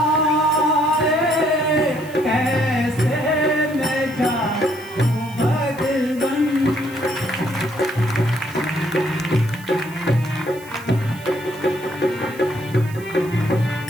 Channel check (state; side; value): noise; right; hiss, 21 dB below the sound